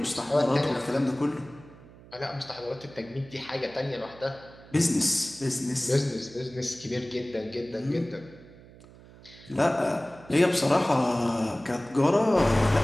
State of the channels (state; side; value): noise; right; hum, 21 dB below the sound